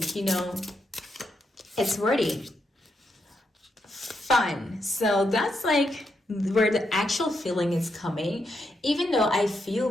you know, it's worthy. Fun. So that's like where the actual feeling is coming. Even though I feel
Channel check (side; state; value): both; normal; correlation 0.81